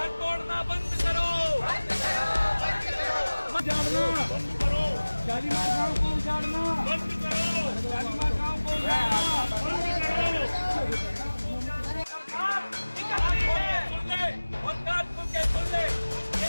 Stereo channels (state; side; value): inverted; both; correlation -1.00